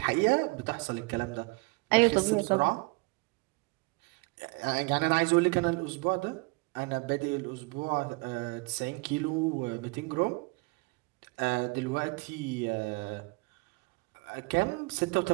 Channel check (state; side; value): quieter; left; 27.1 dB